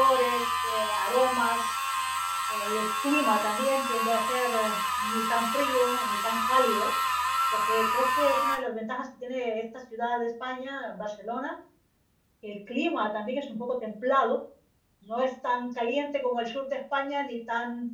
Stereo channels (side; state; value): both; identical; correlation 1.00